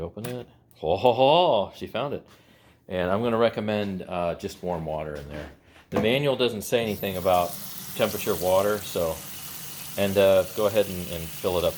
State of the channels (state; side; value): identical; both; correlation 1.00